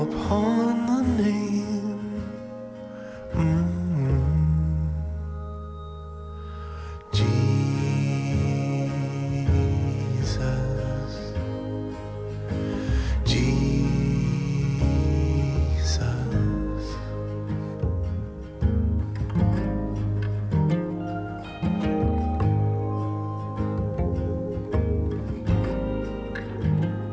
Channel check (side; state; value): both; identical; correlation 1.00